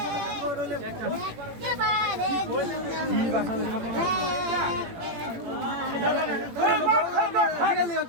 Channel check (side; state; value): left; late; 18 ms